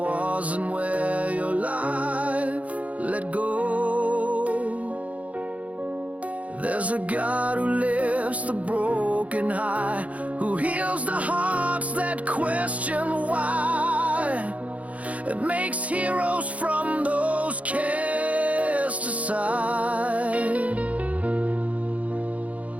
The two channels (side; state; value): left; late; 0.067 ms